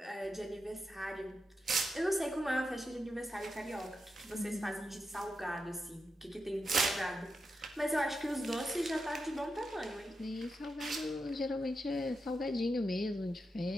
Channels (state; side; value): normal; both; correlation 0.87